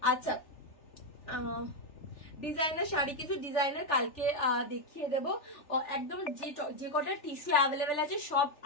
আচ্ছা, ডিজাইনার শাড়ি কিছু ডিজাইনার কালকে দেখিয়ে দেবো। একদম যে কটা টিস্যু অ্যাভেলেবেল আছে সব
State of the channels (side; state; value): right; late; 3.4 ms